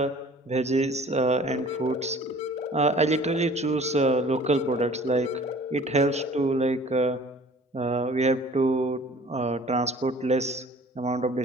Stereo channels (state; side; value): normal; both; correlation 0.49